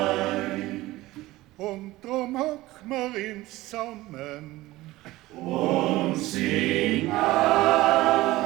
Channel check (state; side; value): quieter; left; 18.0 dB